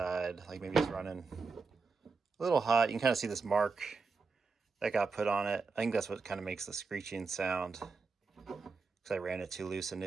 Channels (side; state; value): left; quieter; 4.5 dB